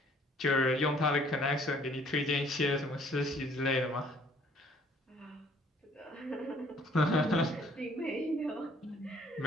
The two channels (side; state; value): both; normal; correlation 0.60